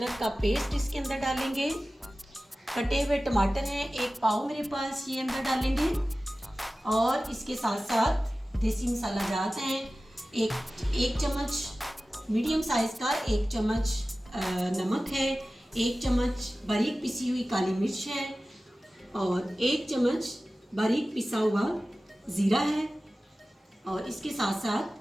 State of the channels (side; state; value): both; normal; correlation 0.96